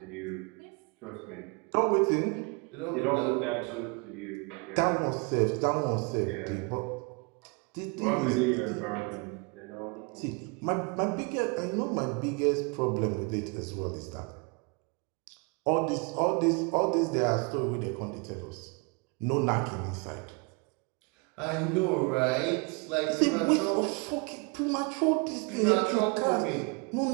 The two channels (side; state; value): left; quieter; 30.9 dB